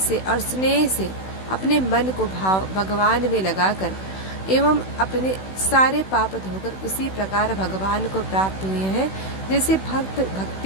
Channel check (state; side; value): late; right; 16 ms